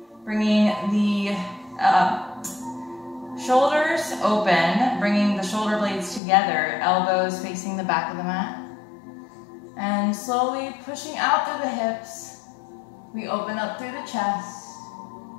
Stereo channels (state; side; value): drops out; right; at 6.2 s